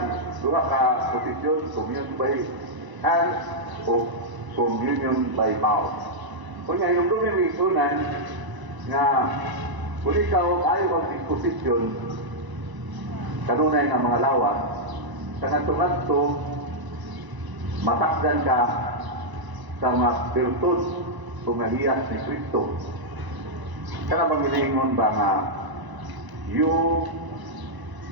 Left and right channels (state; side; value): late; left; 1.0 ms